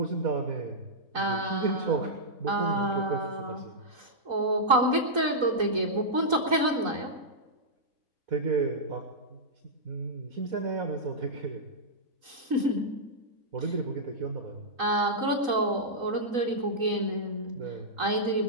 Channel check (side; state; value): left; late; 3.9 ms